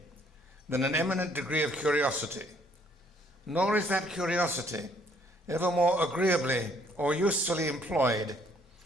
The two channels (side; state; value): both; normal; correlation 0.64